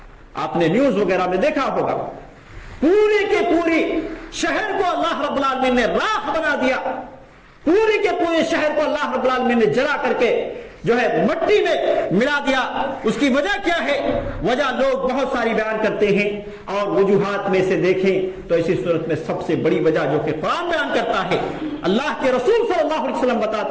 آپ نے نیوز وغیرہ میں دیکھا ہوگا، پوری کے پوری شہر کو اللہ رب العالمین نے راکھ بنا دیا، پوری کے پورے شہر کو اللہ رب العالمین نے جلا کر کے جو ہے مٹی میں ملا دیا۔ اس کی وجہ کیا ہے؟ وجہ لوگ بہت ساری بیان کرتے ہیں، اور وجوہات میں سے دیکھیں تو اسی صورت میں سب سے بڑی وجہ جو کہ قرآن بیان کرتا ہے، اللہ کے رسول صلی اللہ علیہ وسلم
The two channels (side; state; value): both; identical; correlation 1.00